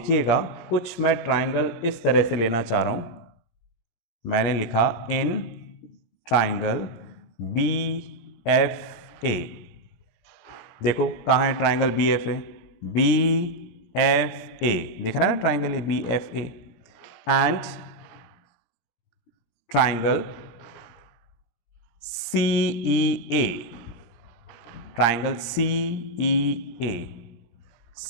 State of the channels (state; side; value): late; right; 17 ms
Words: कुछ मैं ट्राइंगल इस तरह से लेना चाह रहा हूं। मैंने लिखा इन ट्राइंगल BFA। देखो कहाँ है ट्राइंगल BFA, BFA दिख रहा है ना ट्राइंगल ये BFA, and triangle CEA, triangle CEA,